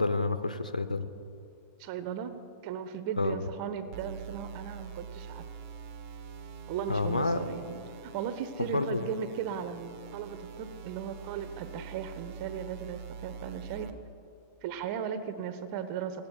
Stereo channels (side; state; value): both; inverted; correlation -0.51